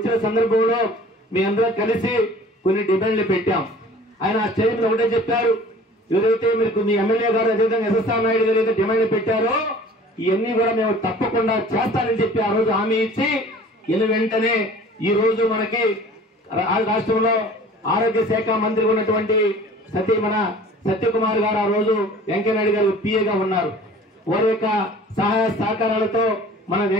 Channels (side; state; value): both; normal; correlation 0.46